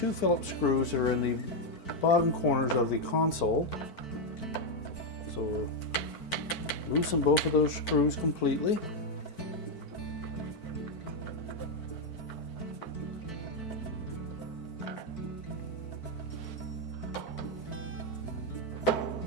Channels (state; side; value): late; right; 4.5 ms